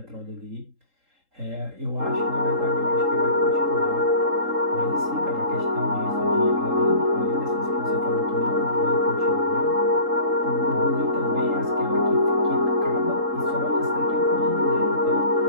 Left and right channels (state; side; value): late; left; 3.8 ms